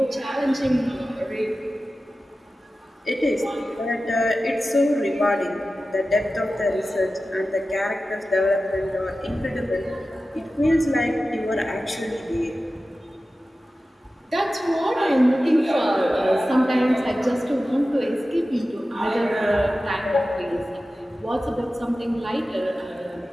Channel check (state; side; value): normal; both; correlation 0.94